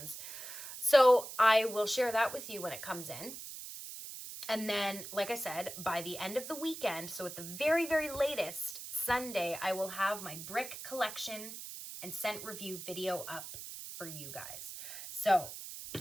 So I will share that with you when it comes in. And then, like I said, by the end of the weekend, so at the very, very latest, Sunday, I will have my brick collection and scent review video up for you guys. So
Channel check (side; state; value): right; noise; hiss, 10 dB below the sound